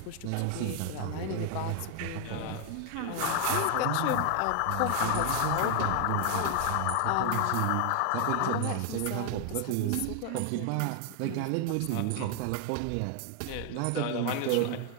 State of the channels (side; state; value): both; different; correlation 0.00